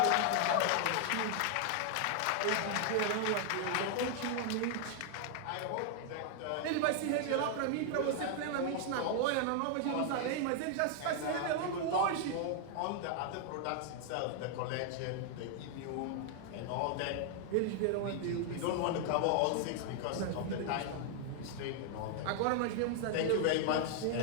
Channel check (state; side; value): different; both; correlation 0.00